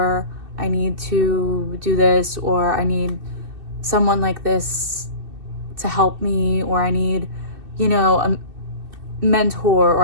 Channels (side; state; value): left; late; 2.6 ms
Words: I need to do this, or I need someone like this to help me, or I need, a mentor,